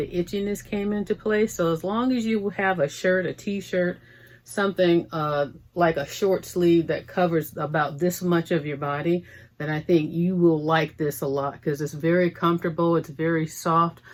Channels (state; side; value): identical; both; correlation 1.00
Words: itchiness came into play. So as long as you have a shirt, a t-shirt, something like a short sleeve that covers about this much of your body, then I think you will like this a lot, because it's very comfortable. It's very soft.